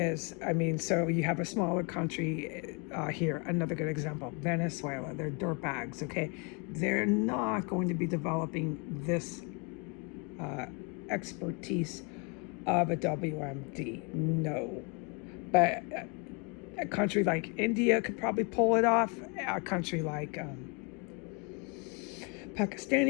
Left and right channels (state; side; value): quieter; right; 33.3 dB